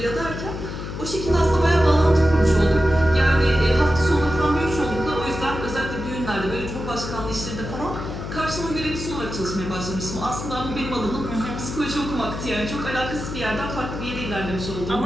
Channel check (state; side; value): noise; left; hum, 7 dB below the sound